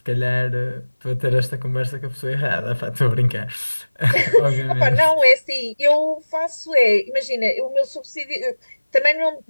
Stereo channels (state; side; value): inverted; both; correlation -1.00